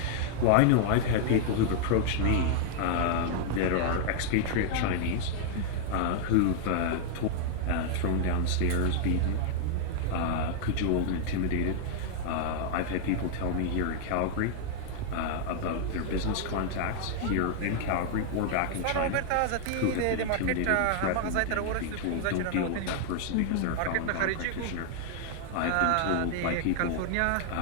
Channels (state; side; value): different; both; correlation 0.00